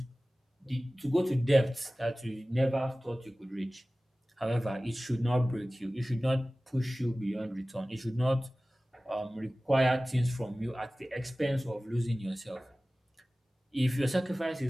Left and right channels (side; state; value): both; normal; correlation 0.97